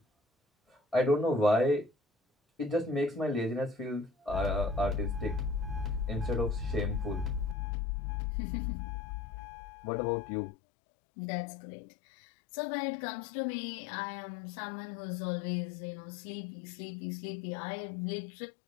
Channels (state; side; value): drops out; right; at 7.6 s